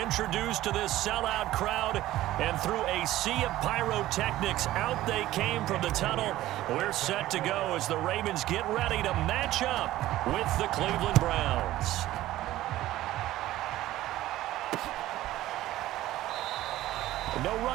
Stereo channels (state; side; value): quieter; left; 15.2 dB